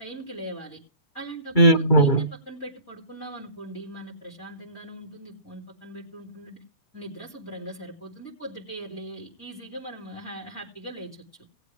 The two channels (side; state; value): right; late; 2.2 ms